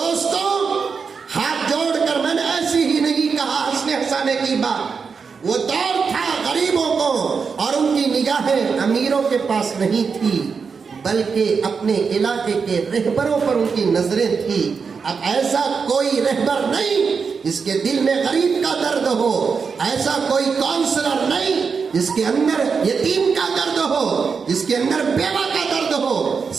हाथ जोड़कर मैंने ऐसी ही नहीं कहा हंसने हंसाने की बात, वो दौर था गरीबों को, और उनकी निगाहें अमीरों के पास नहीं थी, बल्कि अपने इलाके के रहबरों पर उनकी नजरें थी। अब ऐसा कोई रहबर नहीं जिसके दिल में गरीब का दर्द हो, ऐसा कोई काउंसलर नहीं जिसके अंदर यतीम का दर्द हो, जिसके अंदर बेवा का दर्द हो।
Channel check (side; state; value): left; quieter; 5.5 dB